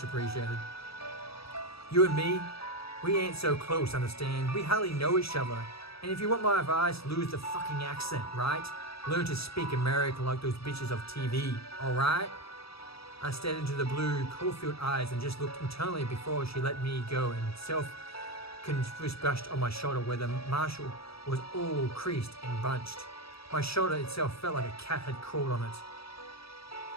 appreciated. You and me, we ain't so close, understand? We hardly know each other. And if you want my advice, lose the fucking accent, right? Learn to speak American like those bitches of TV, alright? I stared into the blue, coal-filled eyes and just looked internally before she let me go and self-confused brushed on my shoulder where the marshal was all creased and bunched. My shoulder itself felt like a cat had crawled on it.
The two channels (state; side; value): late; right; 0.77 ms